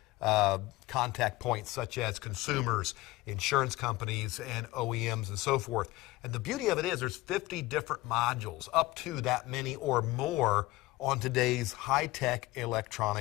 contact points such as consumers, insurance companies, and OEMs and so forth. And the beauty of it is there's 50 different modules, up to that many or more on today's high-tech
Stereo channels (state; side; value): quieter; right; 19.1 dB